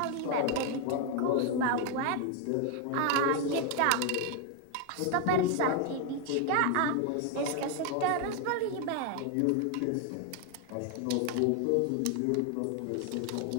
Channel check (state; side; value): different; both; correlation 0.01